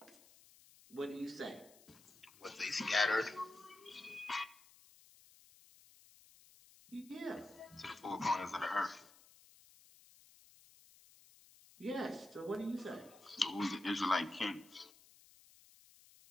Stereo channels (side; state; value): left; noise; hiss, 24 dB below the sound